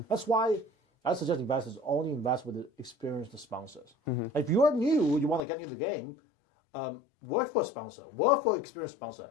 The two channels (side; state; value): right; drops out; at 5.4 s